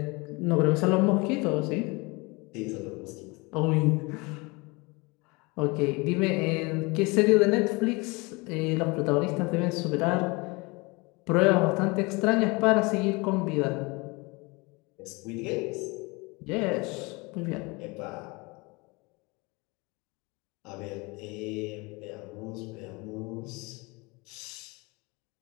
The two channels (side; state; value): right; quieter; 26.3 dB